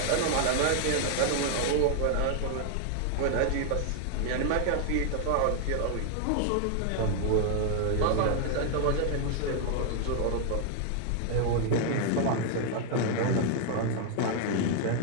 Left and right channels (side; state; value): both; different; correlation 0.00